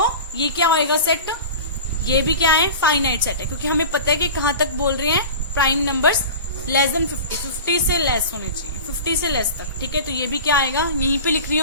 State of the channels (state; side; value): inverted; both; correlation -0.34